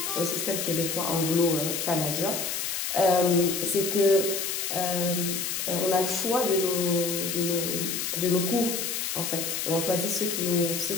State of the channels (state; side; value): noise; left; hiss, 2 dB below the sound